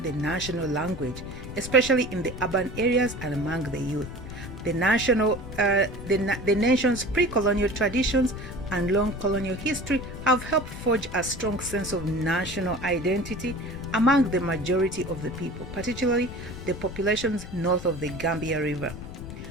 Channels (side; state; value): left; noise; rumble, 11 dB below the sound